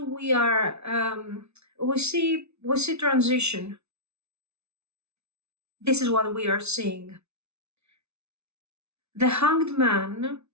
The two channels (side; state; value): left; late; 0.81 ms